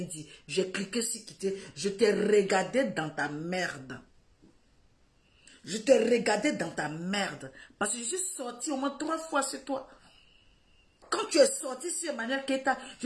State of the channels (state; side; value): identical; both; correlation 1.00